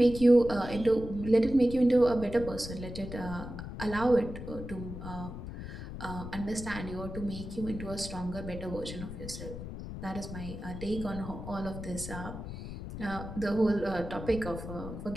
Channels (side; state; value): left; noise; rumble, 9 dB below the sound